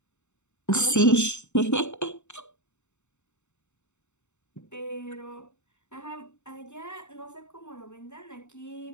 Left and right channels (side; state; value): right; late; 0.83 ms